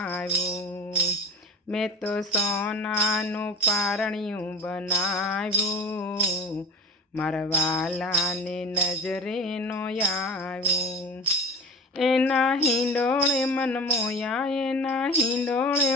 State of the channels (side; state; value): both; normal; correlation 0.35